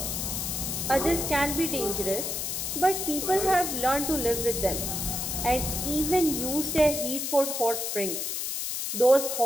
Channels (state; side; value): noise; left; hiss, 2 dB below the sound